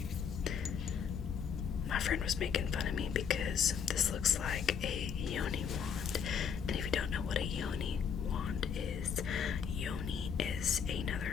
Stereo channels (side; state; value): right; quieter; 7.1 dB